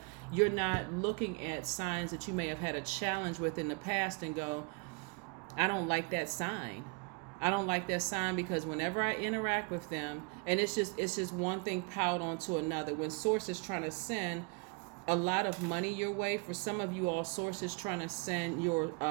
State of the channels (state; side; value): quieter; left; 33.9 dB